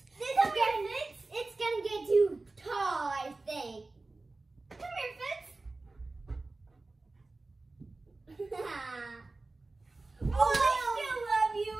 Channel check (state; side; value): quieter; left; 3.3 dB